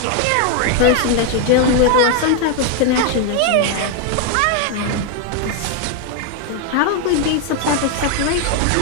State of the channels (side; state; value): both; different; correlation 0.01